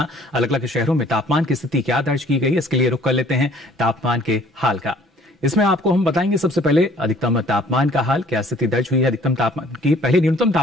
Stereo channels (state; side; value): normal; both; correlation 0.56